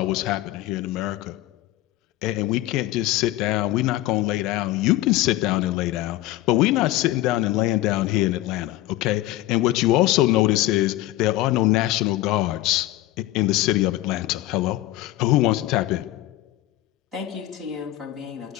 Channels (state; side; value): quieter; right; 16.0 dB